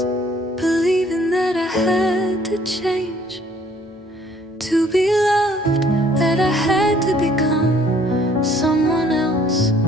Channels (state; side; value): normal; both; correlation 0.60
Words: believing that I had to change to be loved, that I had to become someone else,